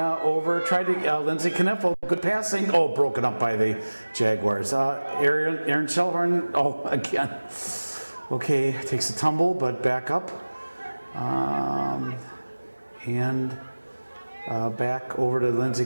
over, tried to, Lindsay Kniffel, good passing. Oh, broken up by the Jaguars. Aaron Shellhorn, oh, again. Okay, takes a tumble, but back up. And back over to Lindsay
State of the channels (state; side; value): inverted; both; correlation -1.00